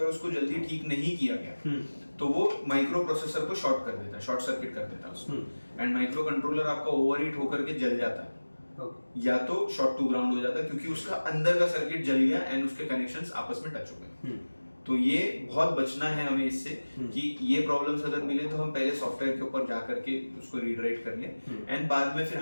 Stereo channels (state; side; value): inverted; both; correlation -1.00